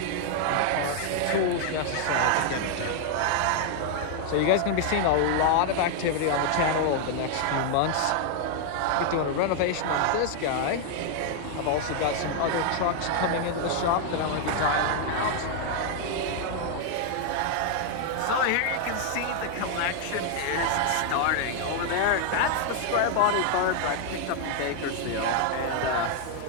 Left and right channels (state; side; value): different; both; correlation 0.00